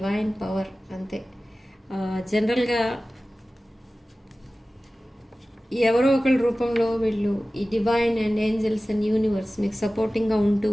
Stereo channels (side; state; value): both; normal; correlation 0.96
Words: పవర్ అంతే. జనరల్గా ఎవరో ఒకరి రూపంలో వీళ్ళు ఈ divine and angels and universe మీకు సపోర్టింగ్గా ఉంటూ